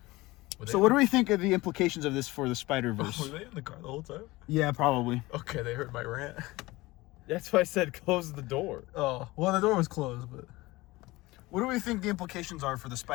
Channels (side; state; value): right; quieter; 20.4 dB